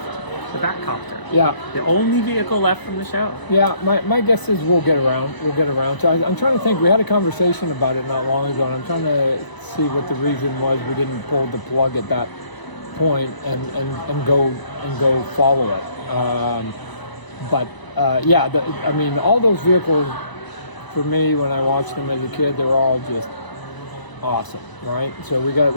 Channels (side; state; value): right; late; 1.0 ms